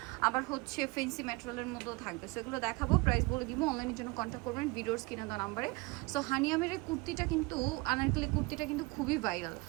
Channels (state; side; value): quieter; left; 25.1 dB